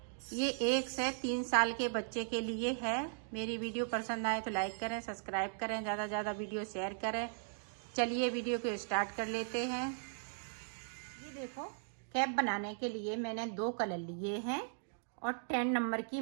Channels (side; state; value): left; silent; digital silence